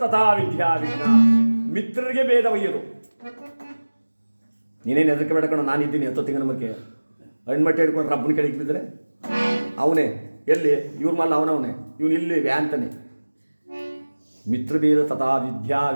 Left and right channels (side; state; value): both; inverted; correlation -1.00